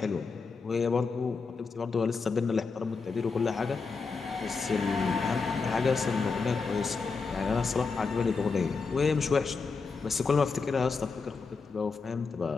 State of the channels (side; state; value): right; quieter; 4.7 dB